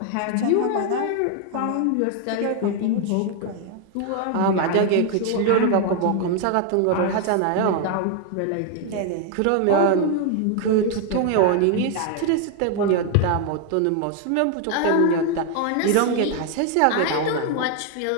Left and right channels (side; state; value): both; different; correlation 0.00